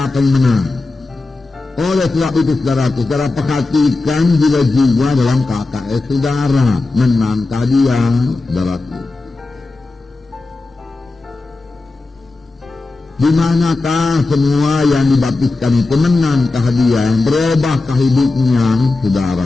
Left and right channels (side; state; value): right; quieter; 3.4 dB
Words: yang menang. Oleh sebab itu, saudara perhatikan jiwa-jiwa dalam KKS saudara. Menangkah dia, saudaraku? Di manakah semua yang dibaptiskan itu menangkah dia, berubahkah hidupnya,